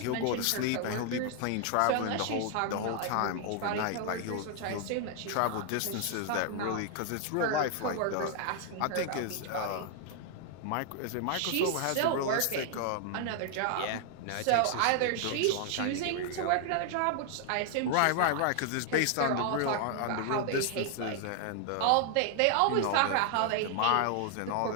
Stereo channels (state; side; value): different; both; correlation 0.00